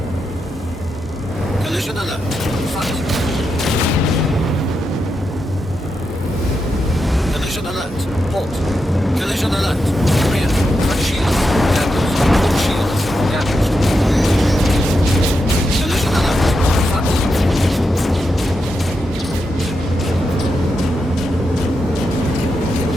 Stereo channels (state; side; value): normal; both; correlation 0.86